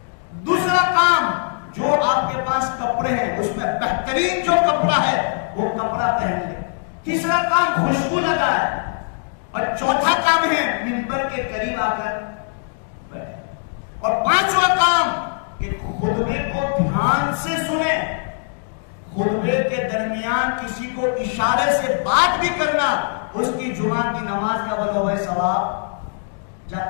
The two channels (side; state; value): right; silent; digital silence